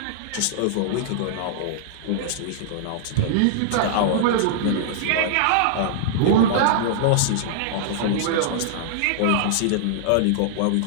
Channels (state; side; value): different; both; correlation -0.01